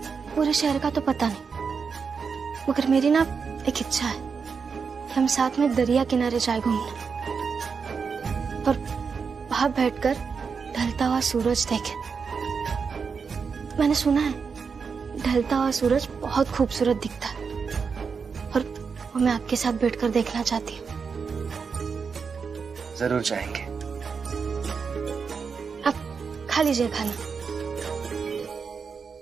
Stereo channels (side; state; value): left; quieter; 5.6 dB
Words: पूरे शहर का तो पता नहीं, मगर मेरी ना एक इच्छा है कि हम साथ में दरिया किनारे जाए घूमने, और वहां बैठकर ढलता हुआ सूरज देखें। मैंने सुना है ढलता हुआ सूरज बहुत खूबसूरत दिखता है, और वो मैं आपके साथ बैठकर देखना चाहती हूँ। जरूर जाएंगे। आप खा लीजिए खाना।